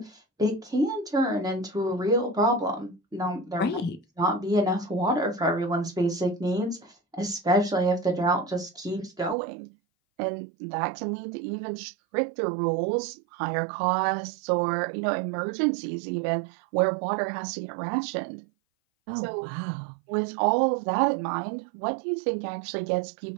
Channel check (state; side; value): drops out; left; at 9.3 s